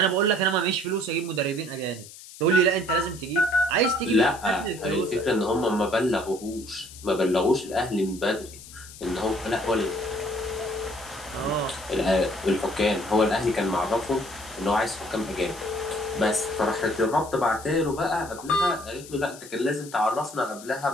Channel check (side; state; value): left; noise; hiss, 17 dB below the sound